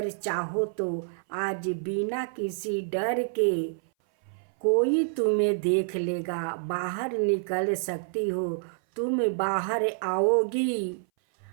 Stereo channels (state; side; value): silent; left; 59 dB below the other